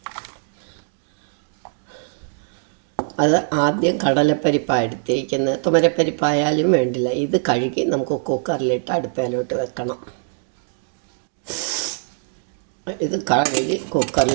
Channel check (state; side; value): silent; left; digital silence